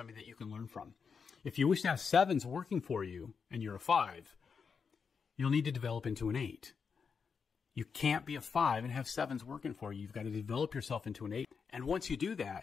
that you can learn from. If you wish to have 7s working for you and you're a 5, you'll need to develop into an 8. You can't be a 5 and have 7s working for you. You've got to develop yourself into an 8. And once you do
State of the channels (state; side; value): quieter; right; 5.9 dB